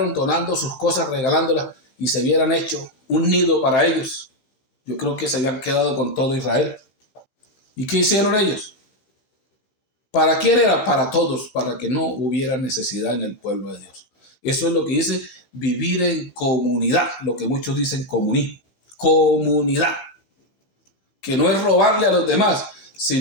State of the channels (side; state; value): right; late; 15 ms